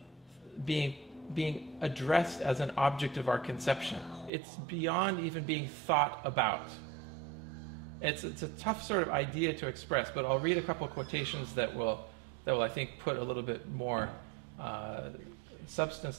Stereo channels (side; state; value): left; drops out; at 4.3 s